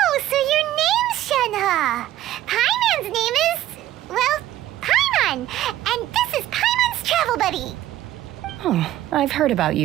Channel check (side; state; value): left; quieter; 13.8 dB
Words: so your name's Shenhe. Paimon's name is, well, Paimon. And this is Paimon's travel buddy. Oh, I've heard about